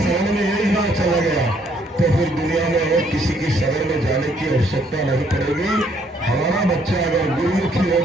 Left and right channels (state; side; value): normal; both; correlation 0.67